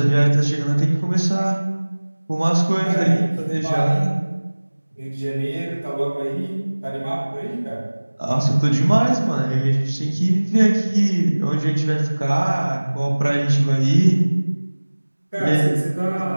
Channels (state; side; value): inverted; both; correlation -1.00